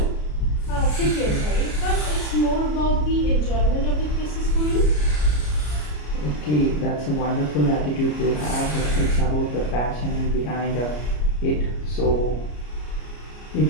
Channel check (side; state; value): right; late; 33 ms